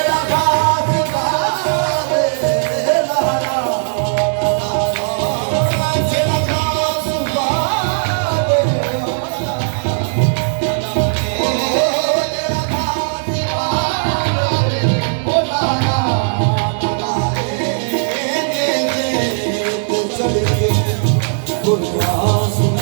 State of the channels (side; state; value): left; silent; digital silence